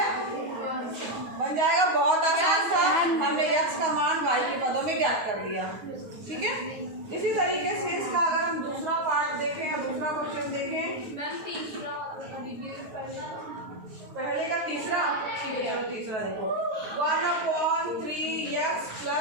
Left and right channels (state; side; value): late; left; 9.4 ms